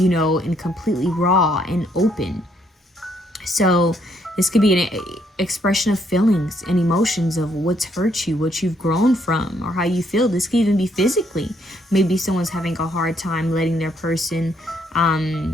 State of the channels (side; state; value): both; normal; correlation 0.71